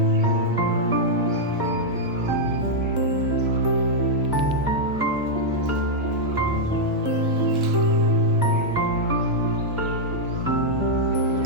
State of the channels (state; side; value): normal; both; correlation -0.04